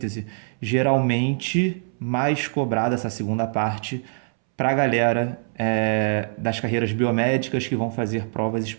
Geralmente, mais cobrada essa segunda parte para a galera das carreiras biomédicas que vão fazer provas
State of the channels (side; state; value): left; silent; 63 dB below the other